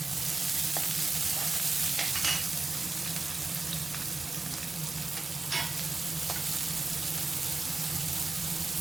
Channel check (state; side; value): quieter; left; 3.4 dB